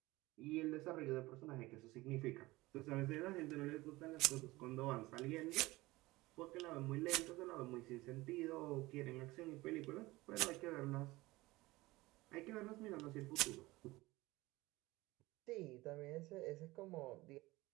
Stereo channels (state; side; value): quieter; left; 20.0 dB